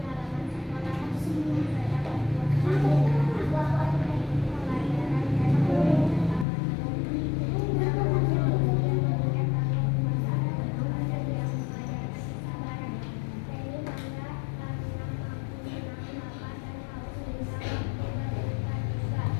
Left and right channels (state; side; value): drops out; right; at 6.5 s